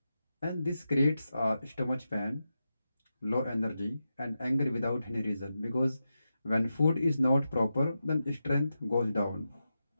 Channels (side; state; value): both; inverted; correlation -0.89